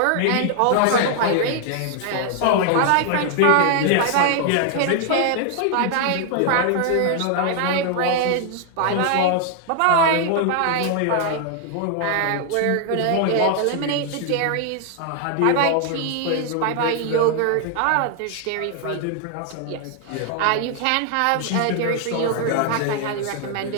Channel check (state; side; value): different; both; correlation 0.00